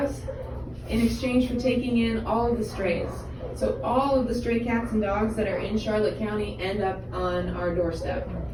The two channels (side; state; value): both; identical; correlation 1.00